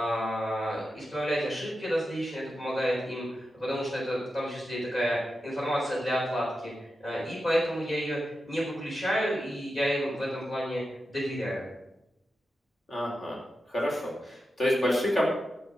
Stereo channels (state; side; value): normal; both; correlation 0.90